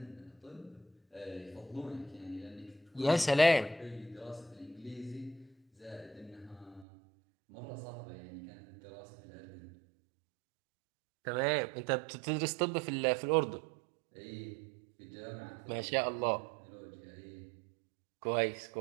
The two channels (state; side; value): drops out; left; at 6.9 s